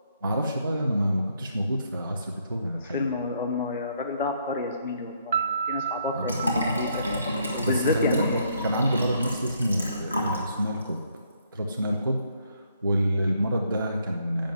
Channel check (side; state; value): both; inverted; correlation -0.71